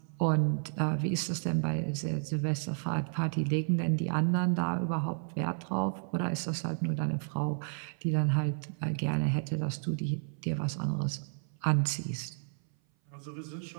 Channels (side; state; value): left; silent; 56 dB below the other